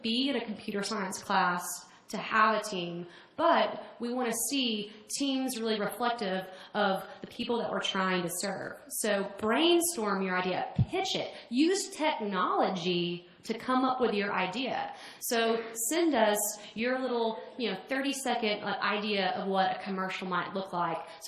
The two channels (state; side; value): identical; both; correlation 1.00